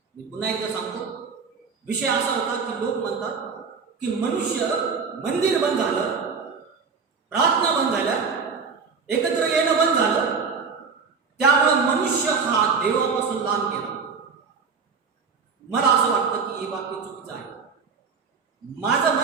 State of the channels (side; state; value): left; quieter; 5.4 dB